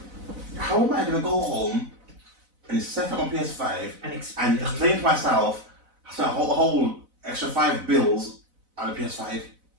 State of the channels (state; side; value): late; left; 4.0 ms